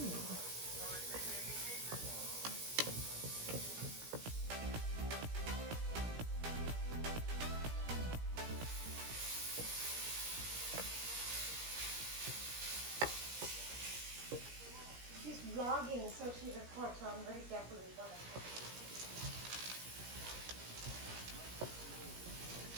she's vlogging, so she records, so I'm very careful with what I'm talking.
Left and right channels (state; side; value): late; left; 17 ms